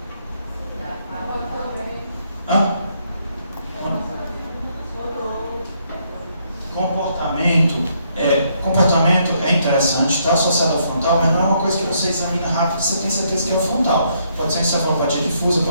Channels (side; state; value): both; inverted; correlation -0.72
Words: Hã? Comportamento é interessante, está associado ao frontal, mas não é uma coisa que você examina rápido e você tem certeza que é o frontal. Pode ser encefalopatia difusa,